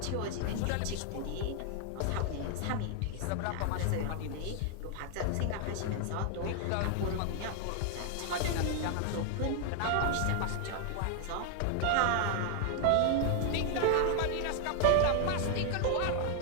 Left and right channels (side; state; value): both; different; correlation 0.00